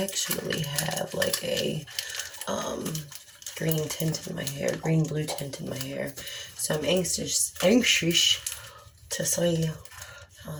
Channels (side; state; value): both; identical; correlation 1.00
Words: have like a green tint in my hair, green blue tint in my hair. So I'm anxious to see how